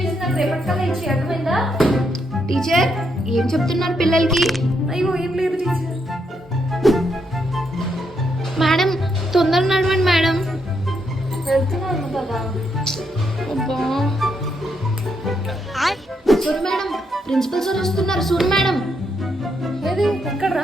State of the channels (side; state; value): both; normal; correlation 0.78